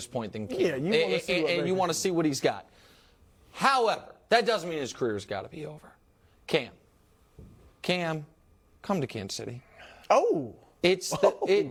point than Cam. Yeah, you want to see what he's got. However, that doesn't mean his career's got to be over. Cam, come to Kansas City. Oh. It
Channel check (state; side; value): identical; both; correlation 1.00